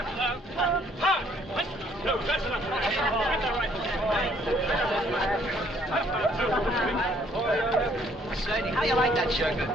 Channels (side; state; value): both; normal; correlation 0.63